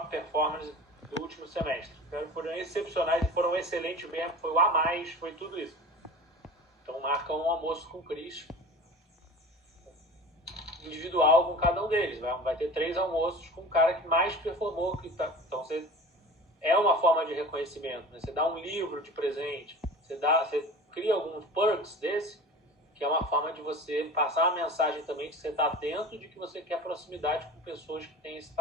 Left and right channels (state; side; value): normal; both; correlation 0.36